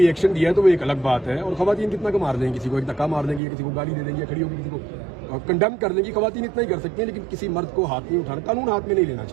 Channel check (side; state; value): left; drops out; at 3.4 s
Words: एक्शन दिया है तो वो एक अलग बात है, और खवातीन कितना का मार देंगी, किसी को एक धक्का मार देंगी, या किसी को गाली दे देंगी, या खड़ी होकर किसी को कंडेम कर देंगी, खवातीन इतना ही कर सकती हैं, लेकिन किसी मर्द को हाथ नहीं उठाना, कानून हाथ में नहीं लेना